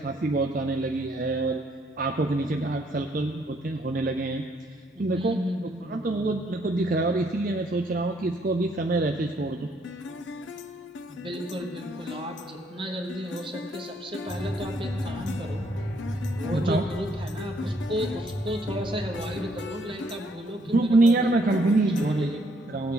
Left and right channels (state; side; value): normal; both; correlation 0.69